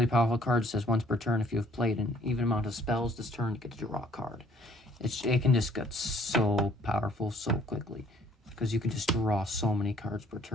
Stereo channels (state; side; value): normal; both; correlation 0.60